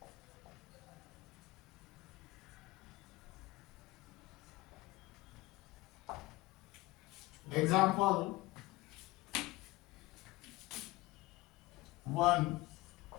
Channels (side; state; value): right; quieter; 19.5 dB